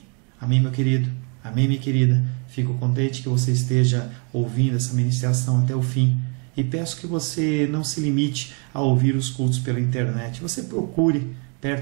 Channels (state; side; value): quieter; left; 37.2 dB